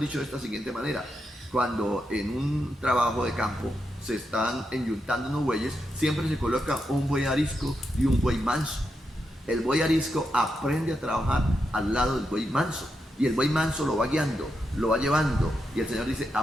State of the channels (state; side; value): normal; both; correlation 0.85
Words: de esta siguiente manera: cuando en un trabajo de campo se están enyuntando unos bueyes, siempre se coloca un buey arisco y un buey manso. El buey arisco aprende a trabajar al lado del buey manso, y el buey manso lo va guiando, lo va llevando, y el Señor dice: